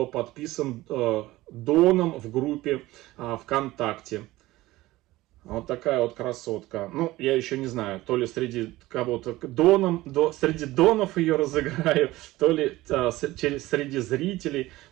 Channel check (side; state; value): left; quieter; 17.9 dB